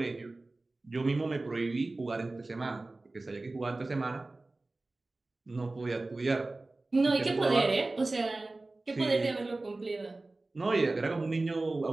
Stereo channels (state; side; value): quieter; left; 3.1 dB